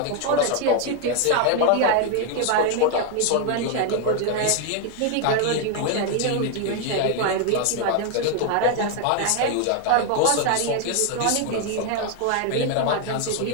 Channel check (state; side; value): different; both; correlation 0.01